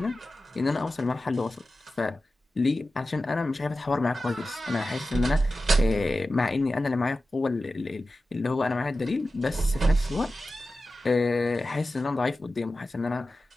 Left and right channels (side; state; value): both; normal; correlation 0.94